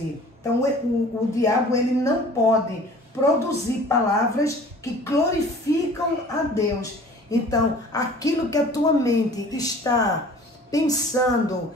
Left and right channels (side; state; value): both; normal; correlation 0.47